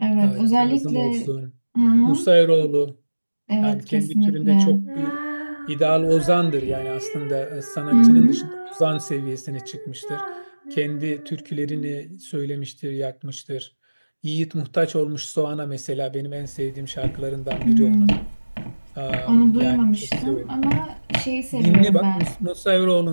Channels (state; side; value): inverted; both; correlation -1.00